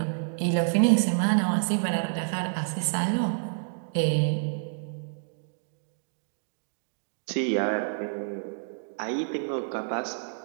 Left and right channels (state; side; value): silent; left; digital silence